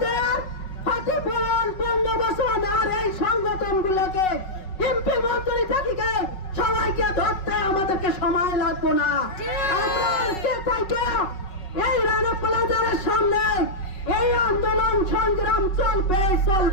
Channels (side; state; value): right; late; 5.4 ms